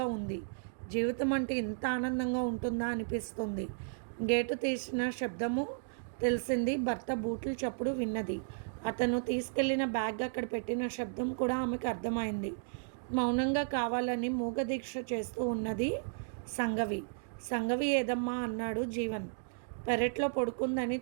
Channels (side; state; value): left; silent; digital silence